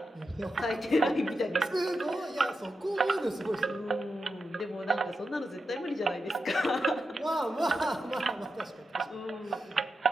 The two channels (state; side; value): normal; both; correlation 0.89